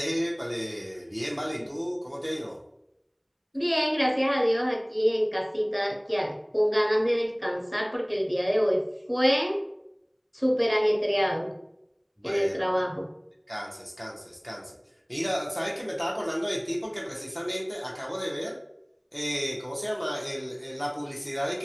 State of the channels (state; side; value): identical; both; correlation 1.00